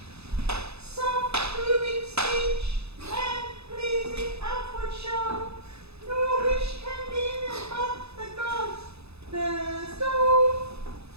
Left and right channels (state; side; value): late; left; 0.79 ms